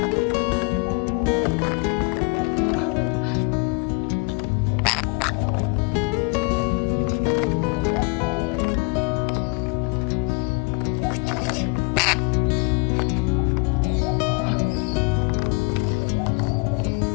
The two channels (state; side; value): quieter; right; 31.2 dB